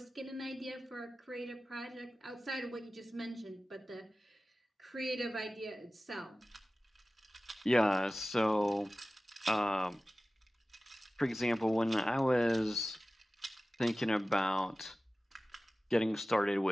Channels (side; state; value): both; normal; correlation 0.97